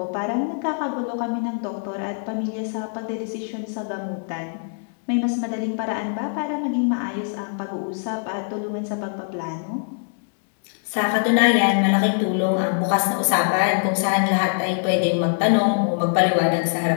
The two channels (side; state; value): right; silent; digital silence